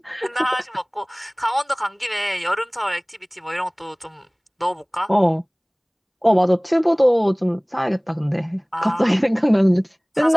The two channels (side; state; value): both; identical; correlation 1.00